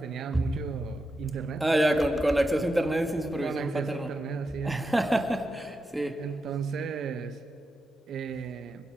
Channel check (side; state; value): both; normal; correlation 0.87